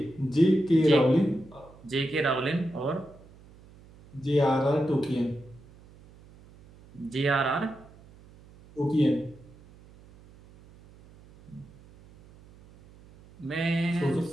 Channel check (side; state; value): right; noise; hum, 24 dB below the sound